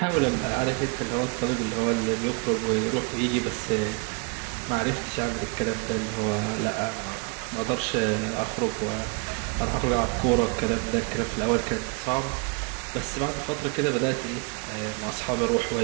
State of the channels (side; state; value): left; quieter; 32.6 dB